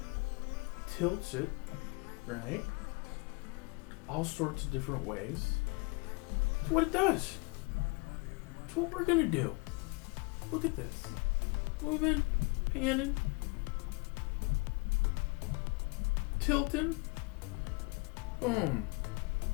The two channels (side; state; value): right; quieter; 29.1 dB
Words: tilts it, right? All sorts of different ways. That's what it does. That's what we're gonna do. Look at this. Moving, panning, tilting, boom,